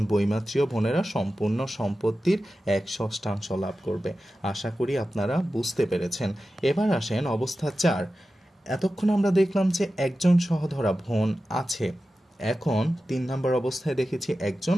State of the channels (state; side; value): normal; both; correlation 0.93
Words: বৈমাত্রীয় বোনেরা সম্পূর্ণ সম্পত্তির 1/6 লাভ করবে। আশা করি আপনারা বুঝতে পেরেছেন। এবার আসেন অবস্থা 4। এতক্ষণ আমরা দেখলাম যে একজন সহধরা বোন আছে। এখন 3 নম্বর অবস্থায় দেখেছি 1 জন।